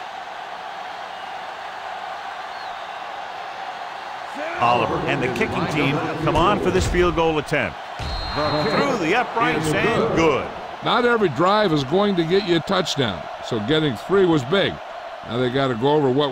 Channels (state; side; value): identical; both; correlation 1.00